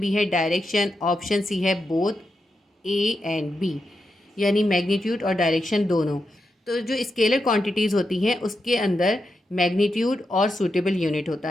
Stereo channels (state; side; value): normal; both; correlation 0.86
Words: है डायरेक्शन, ऑप्शन सी है बोथ ए एंड बी, यानी मैग्नीट्यूड और डायरेक्शन दोनों। तो जो स्केलर क्वांटिटीज़ होती हैं उसके अंदर मैग्नीट्यूड और सूटेबल यूनिट होता